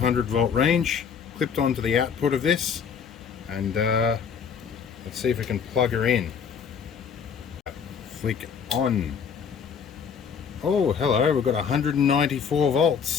volt range clipped onto the output of this, and let's see if we can plug her in. Flick on. Oh, hello, we've got 194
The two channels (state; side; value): quieter; right; 6.7 dB